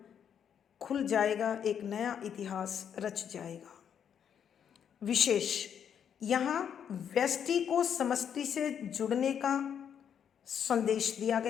खुल जाएगा, एक नया इतिहास रच जाएगा। विशेष यहाँ व्यष्टि को समष्टि से जुड़ने का संदेश दिया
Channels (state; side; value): quieter; right; 8.3 dB